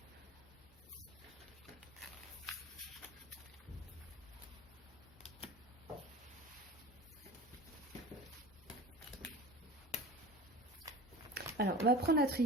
Alors, on va prendre la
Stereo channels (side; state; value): both; normal; correlation 0.36